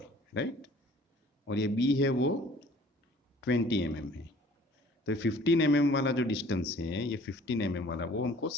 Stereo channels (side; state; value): both; normal; correlation 0.52